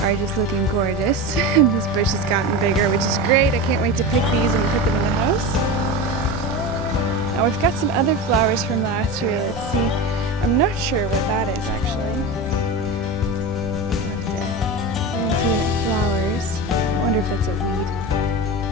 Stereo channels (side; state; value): both; normal; correlation 0.24